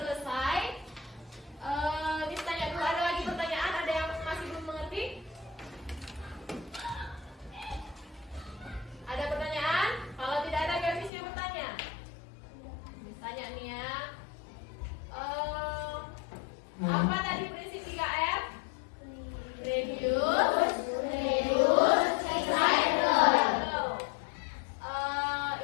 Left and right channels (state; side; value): drops out; right; at 11.1 s